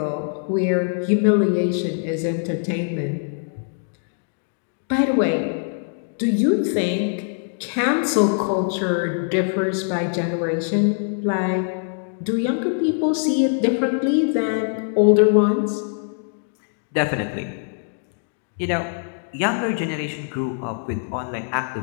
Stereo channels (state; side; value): silent; right; digital silence